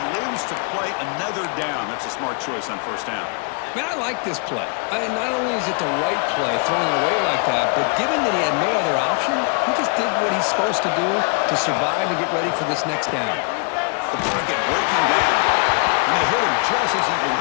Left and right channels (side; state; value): right; quieter; 37.5 dB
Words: lives to play another down. That's a smart choice on 1st down. Man, I like this play. Not only is it the right play, throwing it away like that, but given that he had no other option, he just did what he's supposed to do to survive and get ready for this next down. The pocket breaking down. And they hit him just as he